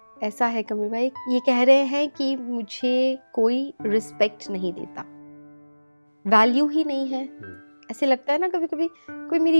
ऐसा है कमल भाई, ये कह रहे हैं कि मुझे कोई रिस्पेक्ट नहीं देता, वैल्यू ही नहीं है। ऐसे लगता है ना कभी कभी, कोई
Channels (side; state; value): both; inverted; correlation -1.00